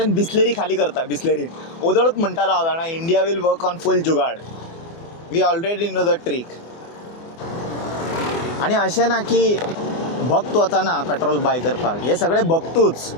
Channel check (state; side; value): late; right; 24 ms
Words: बिस्लेरी खाली करता बिस्लेरी ओदळूच म्हणटालो हांव जाणा India will work on full jugaad we already know the trick. आणि अशें ना की भक्त वचना पेट्रोल बाय करपाक हे सगळे भक्तूच